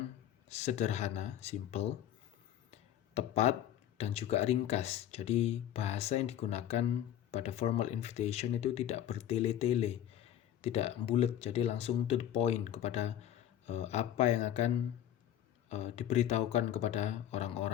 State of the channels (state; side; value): quieter; right; 11.2 dB